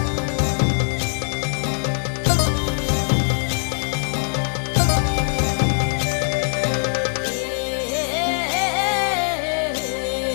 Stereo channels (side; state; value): right; silent; 64 dB below the other